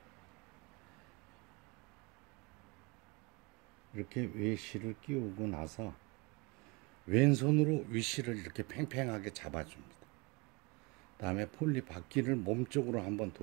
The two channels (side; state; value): left; quieter; 27.8 dB